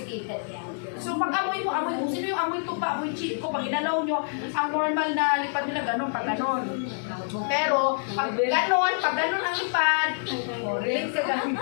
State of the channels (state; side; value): silent; right; digital silence